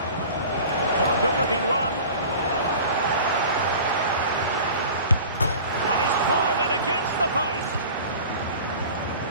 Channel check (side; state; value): both; inverted; correlation -0.40